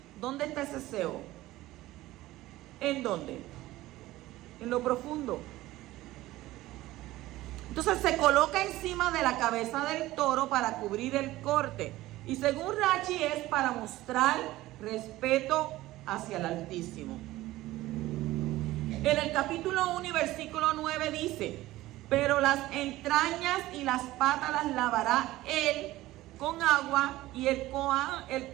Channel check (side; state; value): left; quieter; 16.9 dB